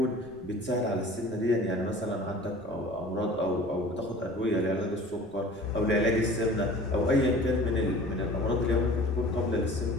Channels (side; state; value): right; noise; rumble, 22 dB below the sound